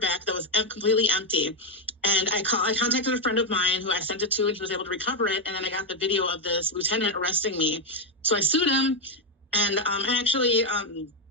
back that was completely empty. And I contacted a friend of mine who I sent it to, and he was able to recover it. And then I got the video of this lieutenant arresting me. So I sued him, and I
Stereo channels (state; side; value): normal; both; correlation 0.04